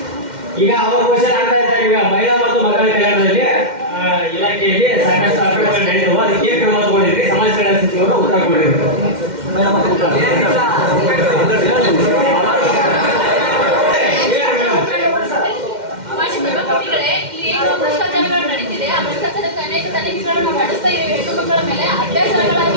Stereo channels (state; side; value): late; left; 2.1 ms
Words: ಈಗ ಅವ್ರ ಕ್ವಶನ್ ಆಗ್ತಾ ಇದ್ದಾರೆ. ಈಗ ಮಹಿಳಾ ಮತ್ತು ಮಕ್ಕಳ ಕಲ್ಯಾಣದಲ್ಲಿ ಇಲಾಖೆಯಲ್ಲಿ ಸಾಕಷ್ಟು ಅಕ್ರಮಗಳು ನಡೆದವು. ಅದಕ್ಕೆ ಕ್ರಮ ತಗೊಂಡಿದ್ರಿ. ಸಮಾಜ ಕಲ್ಯಾಣ ಸಚಿವರು ಉತ್ತರ ಕೊಟ್ಟಿದ್ರು. ಇಲ್ಲಿ ಏನು ಭ್ರಷ್ಟಾಚಾರಗಳು ನಡೀತಿದೆ ಆ ಭ್ರಷ್ಟಾಚಾರಕ್ಕೆ ಅನೇಕ ತನಿಖೆಗಳನ್ನು ನಾವು ನಡೆಸ್ತಾ ಇದ್ದೀವಿ. ಹೆಣ್ಣು ಮಕ್ಕಳ ಮೇಲೆ